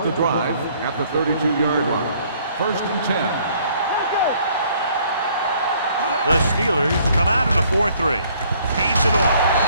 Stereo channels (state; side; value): inverted; both; correlation -0.62